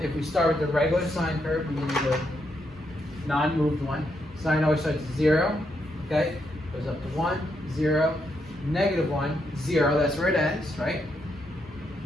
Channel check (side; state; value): both; normal; correlation 0.79